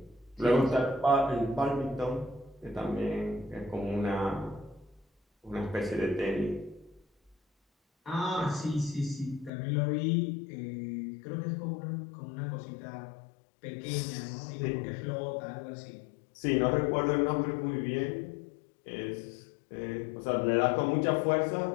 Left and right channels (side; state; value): right; drops out; at 9.5 s